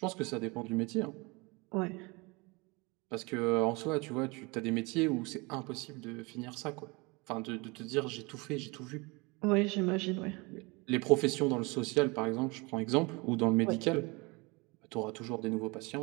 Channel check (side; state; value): left; quieter; 26.7 dB